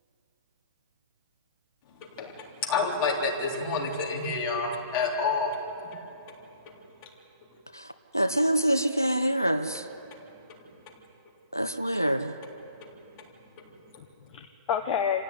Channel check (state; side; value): inverted; both; correlation -0.53